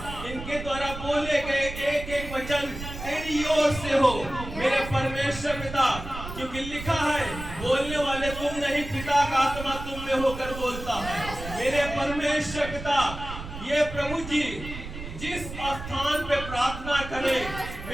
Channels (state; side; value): noise; right; rumble, 10 dB below the sound